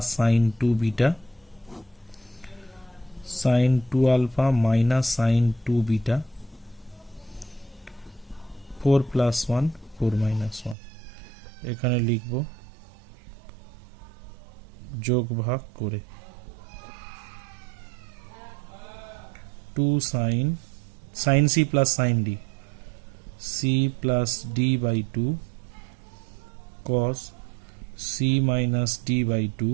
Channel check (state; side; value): drops out; left; at 10.8 s